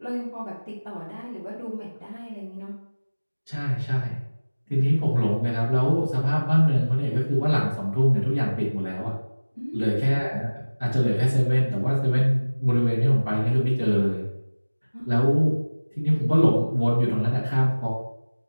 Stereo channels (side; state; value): both; inverted; correlation -1.00